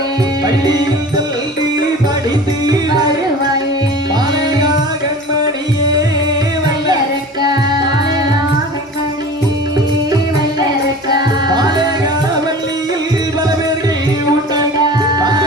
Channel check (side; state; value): both; normal; correlation 0.39